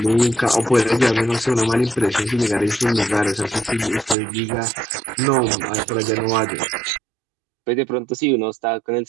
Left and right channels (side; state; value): left; drops out; at 4.2 s